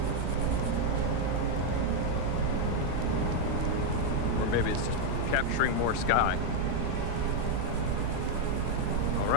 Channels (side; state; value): both; different; correlation 0.01